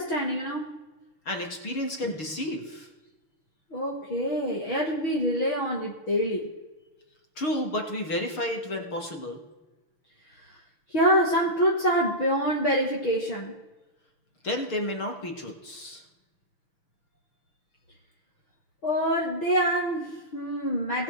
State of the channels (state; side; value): late; right; 6.5 ms